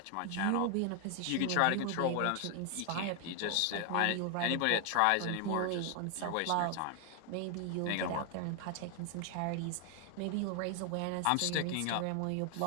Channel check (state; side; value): different; both; correlation 0.00